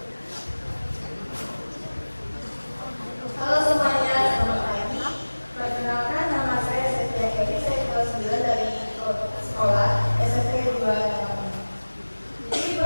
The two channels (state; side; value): inverted; both; correlation -1.00